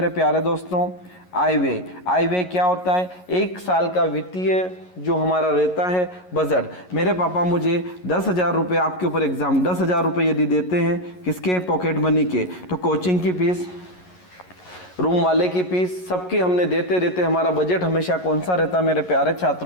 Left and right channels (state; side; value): late; right; 11 ms